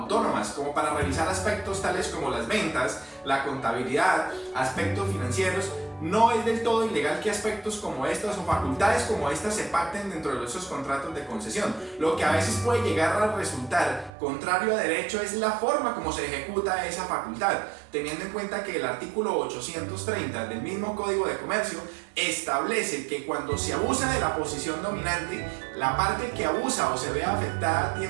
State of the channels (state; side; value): drops out; left; at 14.1 s